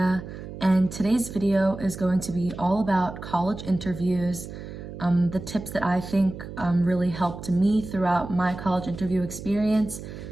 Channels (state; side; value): noise; right; hum, 11 dB below the sound